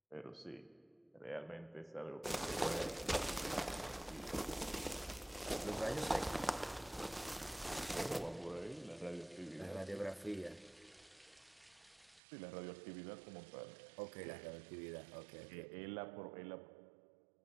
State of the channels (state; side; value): drops out; left; at 12.2 s